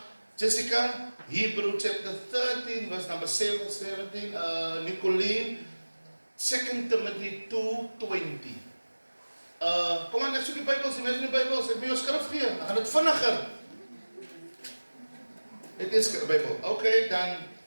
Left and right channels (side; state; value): both; inverted; correlation -1.00